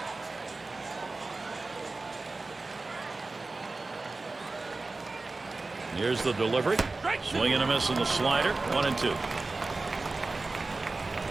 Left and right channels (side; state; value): left; quieter; 3.5 dB